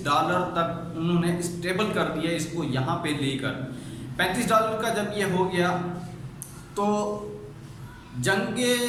تک انہوں نے اسٹیبل کر دیا اس کو یہاں پہ لے کر۔ $35 کا جب یہ ہو گیا تو جنگ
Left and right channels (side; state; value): both; identical; correlation 1.00